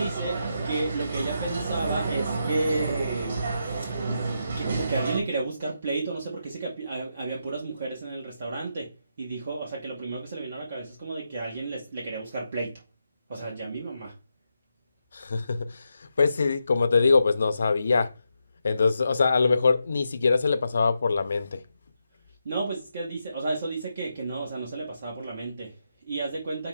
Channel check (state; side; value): inverted; both; correlation -0.84